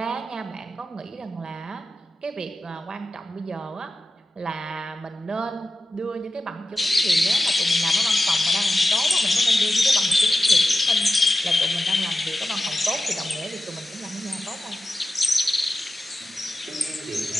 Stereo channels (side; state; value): both; normal; correlation 0.92